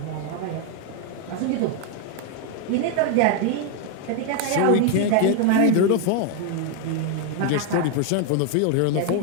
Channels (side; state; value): both; different; correlation 0.01